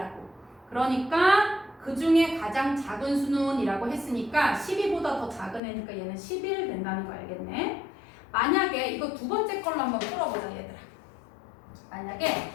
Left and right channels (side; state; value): right; drops out; at 5.6 s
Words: 그러니까 그 중에 가장 작은 수는 이라고 했으니까 12보다 더 작은 애니까 얘는 11 된다는 거 알겠네. 만약에 이거 두 번째 걸로 한번 풀어보자 얘들아. 만약에